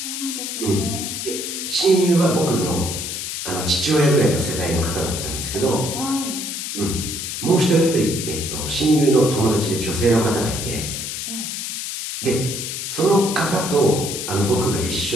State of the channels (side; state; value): left; noise; hiss, 5 dB below the sound